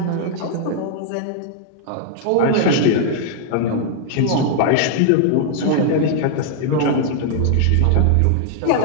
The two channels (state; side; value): different; both; correlation 0.00